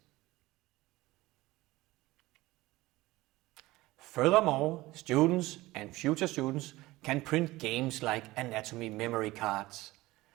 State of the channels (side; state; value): left; quieter; 18.8 dB